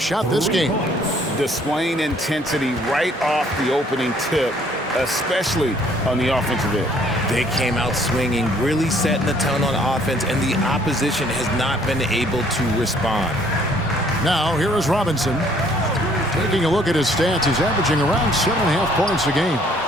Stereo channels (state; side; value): normal; both; correlation 0.61